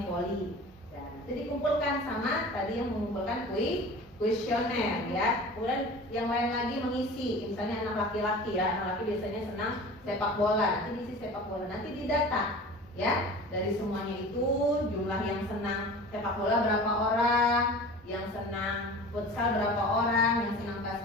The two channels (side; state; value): both; normal; correlation 0.38